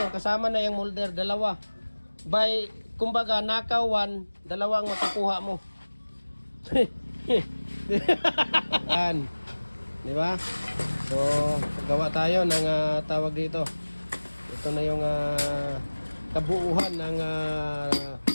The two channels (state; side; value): inverted; both; correlation -1.00